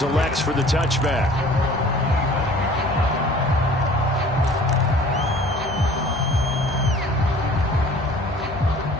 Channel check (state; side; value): normal; both; correlation 0.49